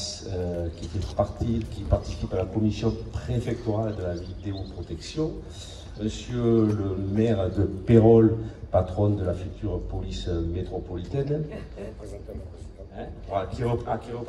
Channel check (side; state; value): both; identical; correlation 1.00